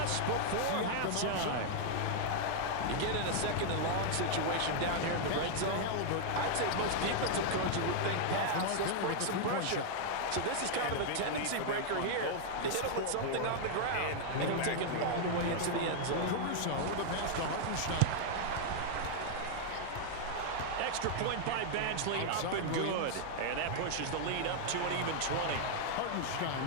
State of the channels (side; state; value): both; different; correlation 0.00